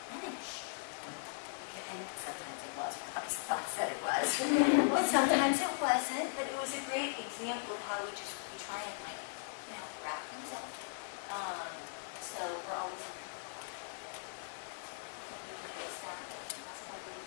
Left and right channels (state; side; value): silent; right; digital silence